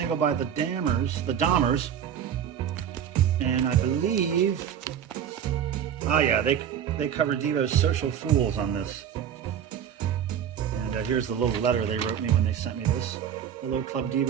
by the Dahmers, and I believe, oh yeah, they covered Devo's Social Fools on this. And here's the little letter they wrote me when they sent me this. Hello Club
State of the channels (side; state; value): left; quieter; 9.0 dB